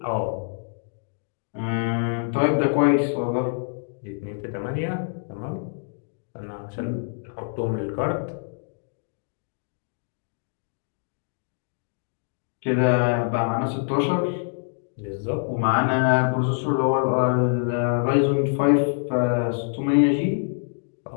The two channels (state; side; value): silent; right; digital silence